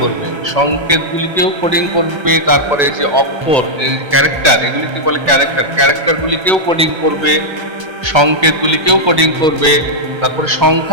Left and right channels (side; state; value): left; late; 1.3 ms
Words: করবে, তারপরে যে অক্ষর, ক্যারেক্টার, এগুলিকে বলে ক্যারেক্টারগুলিকেও কোডিং করবে, সংকেতগুলিকেও কোডিং করবে, তারপরে